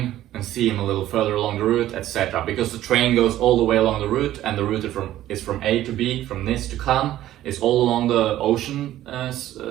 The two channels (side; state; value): left; quieter; 13.6 dB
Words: and see him a little further along the route, etc. Because the train goes all the way along the route, and the route is from A to B, from Nice to Cannes. It's all along the ocean